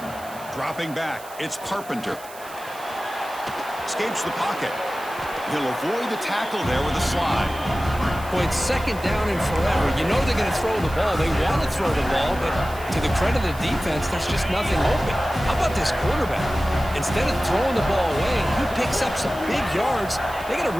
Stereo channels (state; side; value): noise; right; hiss, 18 dB below the sound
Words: Dropping back, it's Carpenter. Escapes the pocket. He'll avoid the tackle there with a slide. Boy, it's 2nd down and forever. You know they're going to throw the ball. They want to throw the ball, but to the credit of the defense, there's just nothing open. How about this quarterback? Instead of throwing the ball away, he picks up some big yards. They got a